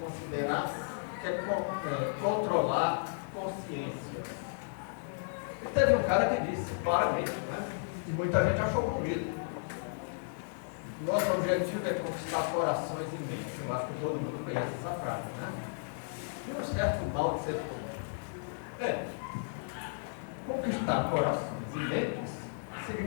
controlar consciências. E teve um cara que disse claramente, né? E muita gente achou bonito. Nosso objetivo é conquistar corações e mentes. Eu acho que todo mundo conhece essa frase, né? E um certo mal de ser todo. Conquistar corações e mentes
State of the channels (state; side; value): silent; right; 55 dB below the other